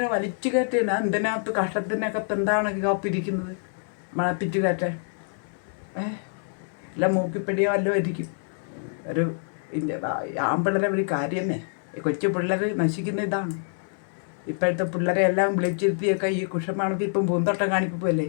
വലിച്ചു കയറ്റിയാണ്. എന്തിനകത്ത് കഷ്ടത്തിനകത്ത് എന്താണ് കാപ്പിരിക്കുന്നത്? മണപ്പിച്ച് കയറ്റാൻ അല്ല മൂക്കിപ്പിടിയോ വല്ലതും ആയിരിക്കും. ഒരു ആമ്പിള്ളേരെ ഒരു കാര്യമേ. കൊച്ചു പിള്ളേർ നശിക്കുന്ന ഇതാണ്. ഇപ്പോഴത്തെ പിള്ളേരെ എല്ലാം വിളിച്ചിരുത്തിയൊക്കെ ഈ കുഷമണപ്പിപ്പും പൂന്തോട്ടം കാണിപ്പിപ്പല്ലേ.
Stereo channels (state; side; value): silent; right; digital silence